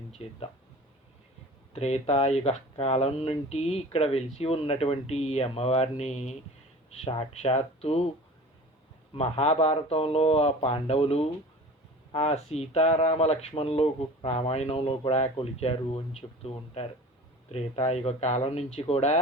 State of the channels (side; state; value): both; normal; correlation 0.40